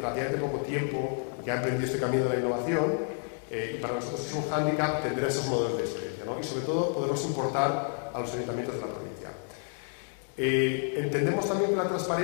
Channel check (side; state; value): right; silent; 58 dB below the other